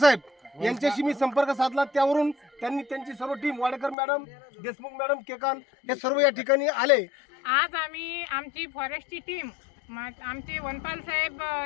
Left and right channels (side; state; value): right; drops out; at 4.0 s